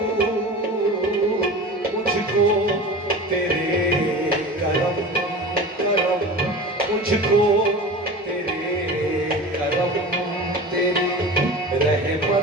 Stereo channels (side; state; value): both; normal; correlation 0.33